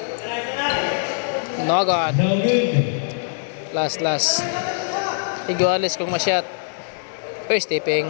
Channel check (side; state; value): right; silent; digital silence